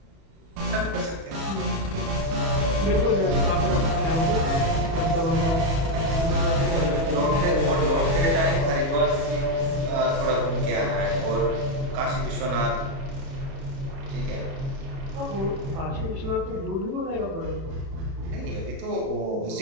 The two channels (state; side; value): late; left; 37 ms